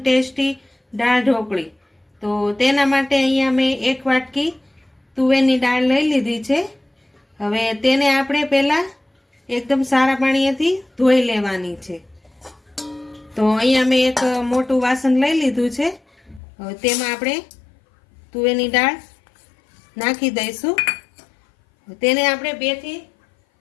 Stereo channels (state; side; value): drops out; right; at 16.4 s